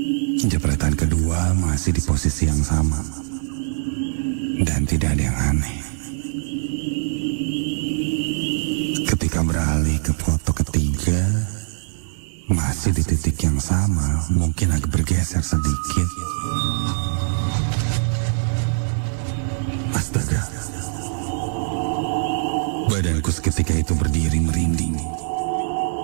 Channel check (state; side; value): silent; left; digital silence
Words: Jepretan kedua masih di posisi yang sama dan tidak ada yang aneh. Ketika beralih ke foto ketiga, masih di titik yang sama, mungkin agak bergeser sedikit. Astaga, badanku seketika itu berdiri merinding.